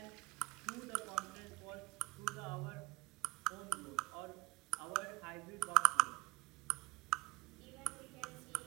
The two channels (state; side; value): quieter; left; 22.3 dB